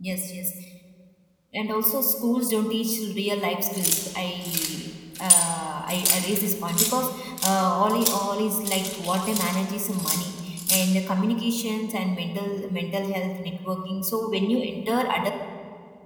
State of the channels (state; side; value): identical; both; correlation 1.00